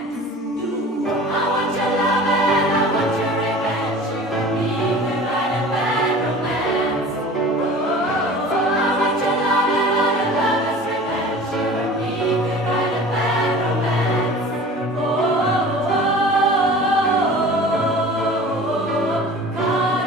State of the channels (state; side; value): normal; both; correlation 0.41